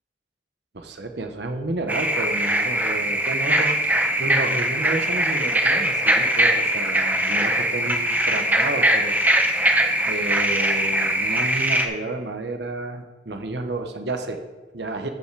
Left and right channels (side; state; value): both; normal; correlation 0.42